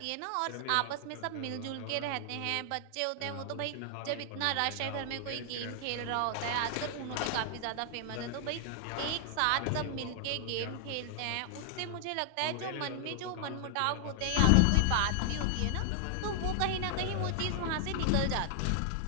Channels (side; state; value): both; different; correlation 0.00